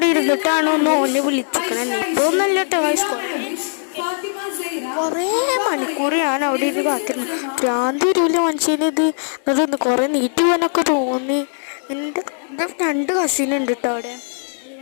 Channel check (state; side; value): silent; right; digital silence